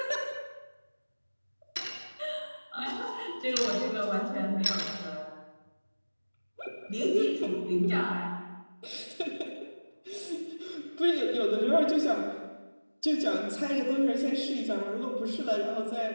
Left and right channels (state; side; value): inverted; both; correlation -1.00